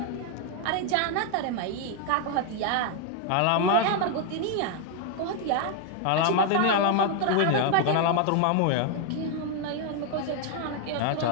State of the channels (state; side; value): different; both; correlation 0.00